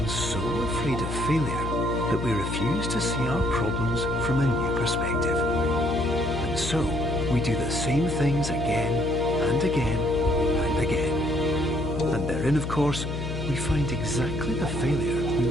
so afraid of failure that we refuse to see our problems from a new perspective. And so, we do the same things again and again and again. And therein, of course, we find exactly the failure we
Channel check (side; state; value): left; noise; hum, 4 dB below the sound